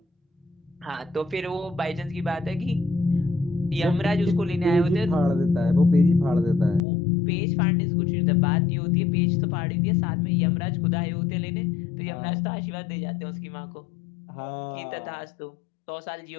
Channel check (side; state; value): right; drops out; at 6.8 s